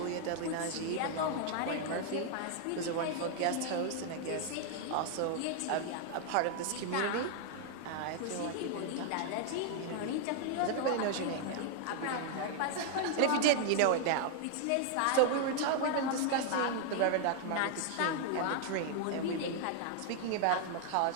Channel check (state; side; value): different; both; correlation 0.00